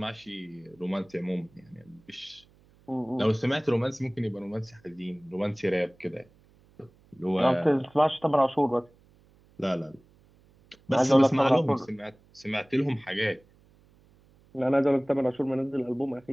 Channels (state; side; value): noise; right; hum, 30 dB below the sound